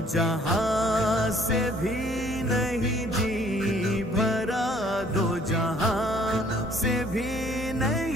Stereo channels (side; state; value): both; normal; correlation 0.59